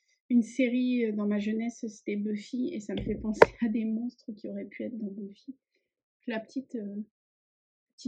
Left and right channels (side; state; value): both; identical; correlation 1.00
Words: dans ma jeunesse, c'était Buffy, et ça me fait penser à des monstres qui auraient pu être dans Buffy. La petite